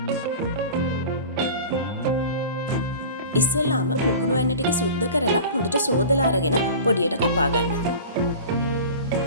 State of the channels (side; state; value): both; inverted; correlation -0.37